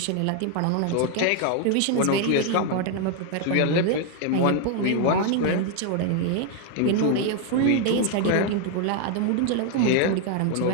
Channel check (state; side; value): different; both; correlation 0.00